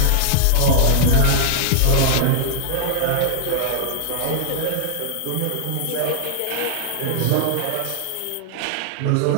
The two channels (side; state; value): both; different; correlation -0.01